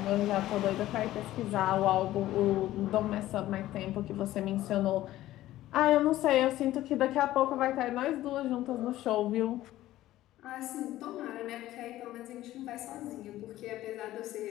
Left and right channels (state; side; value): quieter; right; 14.9 dB